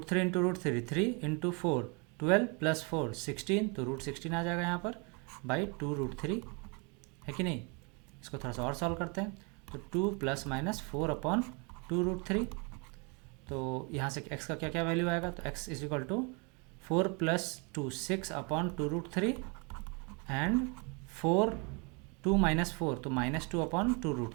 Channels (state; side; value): quieter; left; 32.3 dB